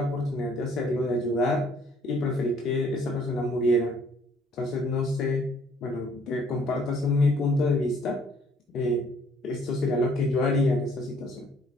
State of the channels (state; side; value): normal; both; correlation 0.61